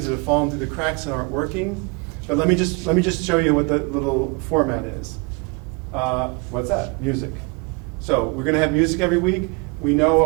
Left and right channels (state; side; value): quieter; left; 30.5 dB